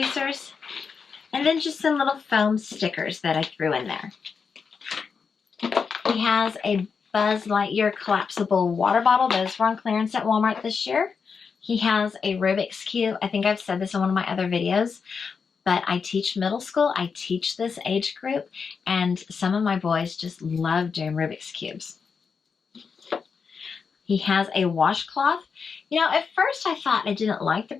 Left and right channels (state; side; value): quieter; right; 5.7 dB